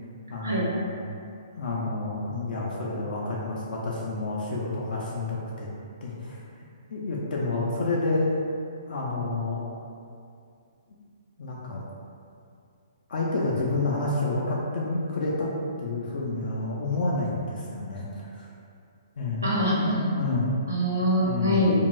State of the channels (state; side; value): inverted; both; correlation -0.47